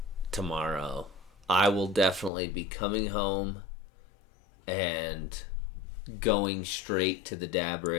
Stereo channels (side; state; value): right; drops out; at 2.3 s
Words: tomorrow, I will definitely be coming home and going straight to the dab